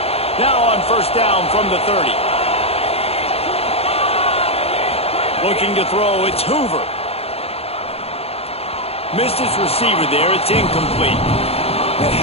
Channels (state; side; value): late; right; 0.29 ms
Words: Now on first down from the 30. Looking to throw, it's Hoover. Missed his receiver there. It's incomplete. And